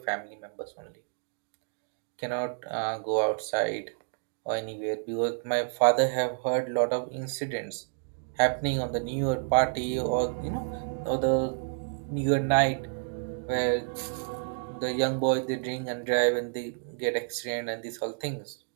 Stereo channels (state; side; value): silent; left; digital silence